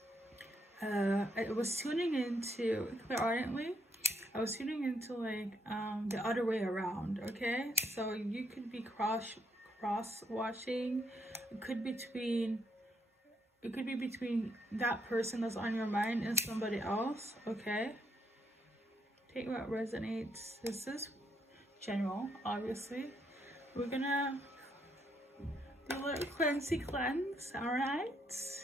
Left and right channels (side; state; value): both; normal; correlation 0.75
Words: I was tuning into clairaudiently. I was tuning into like the other way around, okay? So you could be cross watching. It could be between that person that's on your mind and somebody else, okay? Take what resonates. This is general, obviously. We're gonna do a little cleanse, alright?